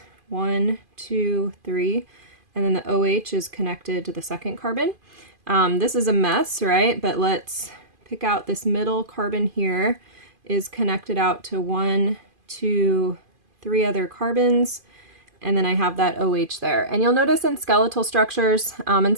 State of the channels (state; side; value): late; left; 2.5 ms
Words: 1, 2, 3, and then the OH is connected to the second carbon. This is a mess, right? But let's pick out this middle carbon here is connected out to 1, 2, 3 other carbons, and then I have that OH there. And you'll notice in skeletal structures, and